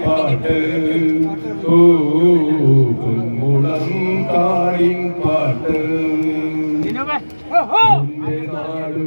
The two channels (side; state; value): both; inverted; correlation -1.00